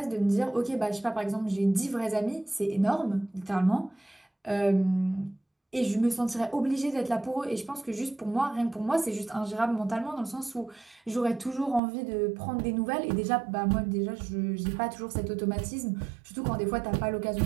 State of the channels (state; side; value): drops out; left; at 11.8 s